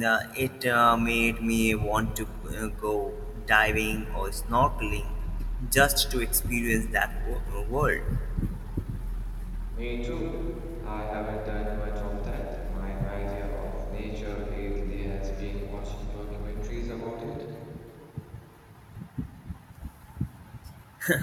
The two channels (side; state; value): both; identical; correlation 1.00